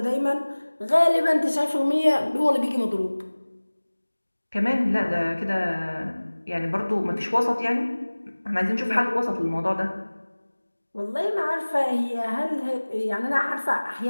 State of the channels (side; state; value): both; inverted; correlation -1.00